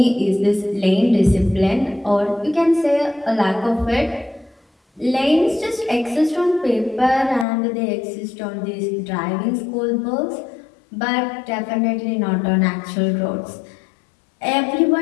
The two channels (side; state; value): right; drops out; at 7.5 s